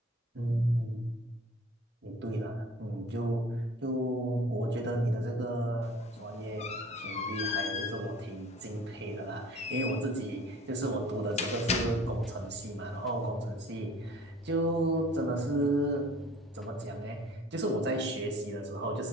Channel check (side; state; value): both; normal; correlation 0.47